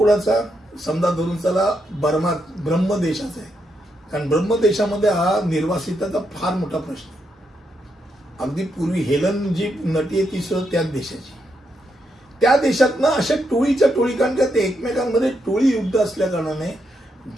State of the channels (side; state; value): both; normal; correlation 0.81